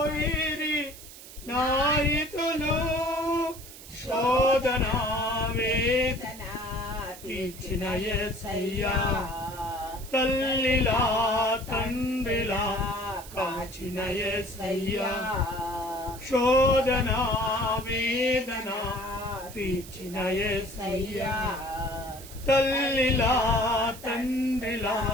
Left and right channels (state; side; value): noise; right; hiss, 16 dB below the sound